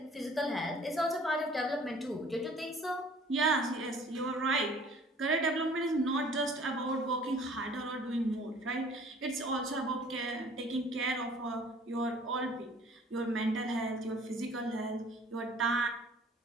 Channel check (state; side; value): normal; both; correlation 0.52